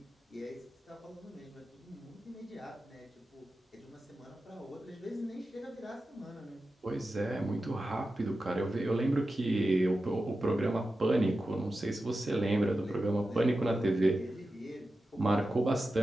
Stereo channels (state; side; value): normal; both; correlation 0.92